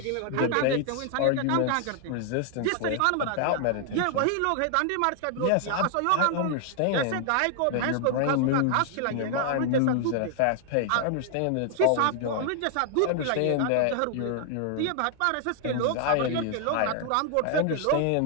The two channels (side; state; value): both; different; correlation 0.00